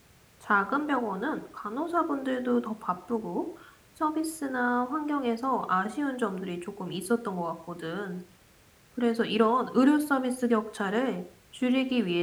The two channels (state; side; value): identical; both; correlation 1.00